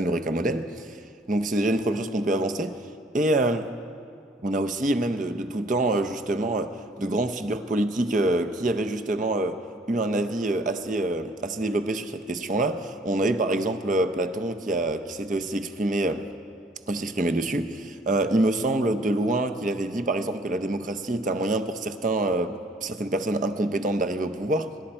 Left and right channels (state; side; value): normal; both; correlation 0.59